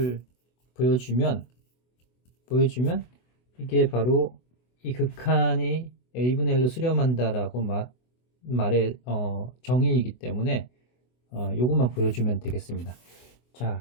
보여주면 이게 바로 이 극한이 a분의 1로 수렴한다라고 말의 정의이기 때문에 요것만 보여주면 되겠습니다.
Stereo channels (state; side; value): late; right; 24 ms